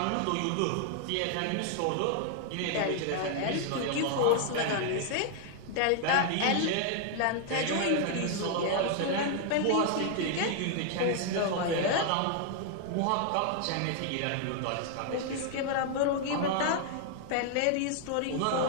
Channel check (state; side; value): different; both; correlation 0.00